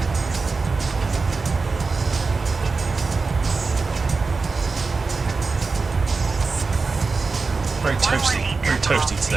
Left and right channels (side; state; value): left; quieter; 4.3 dB